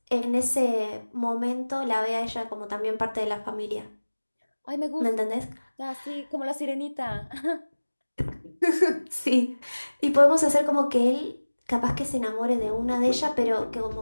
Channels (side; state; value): both; inverted; correlation -1.00